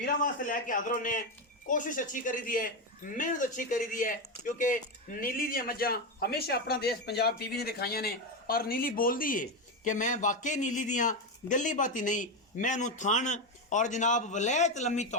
वास्ते लैके हाज़र होने कोशिश अच्छी करी दी है मेहनत अच्छी करी दी है क्योंकि नीली दी मज्जां हमेशा अपना देश पंजाब टीवी ने दिखाइया ने और नीली बोलती है कि मैं वाकई नीली दियाँ गली बाती नहीं मैं नू थन और जनाब वलैत लम्मी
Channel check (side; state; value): both; normal; correlation 0.11